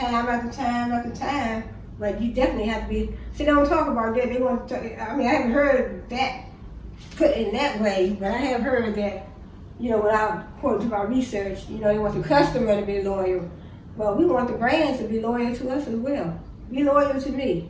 after time after time, but you definitely have to be, see, they don't talk about that. They want to, I mean, I haven't heard that put in that way, but I have heard that, you know, without according to my research, you know, they want the customer to be loyal. Well, we want the brands to be loyal to us as well. Be loyal to me.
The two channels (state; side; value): identical; both; correlation 1.00